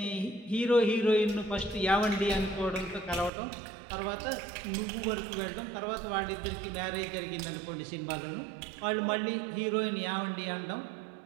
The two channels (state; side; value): drops out; left; at 3.3 s